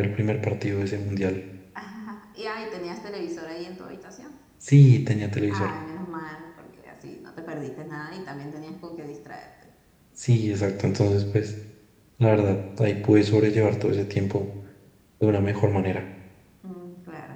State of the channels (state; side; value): identical; both; correlation 1.00